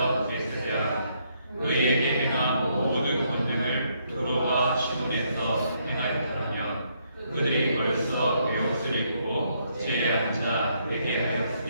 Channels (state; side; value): inverted; both; correlation -0.73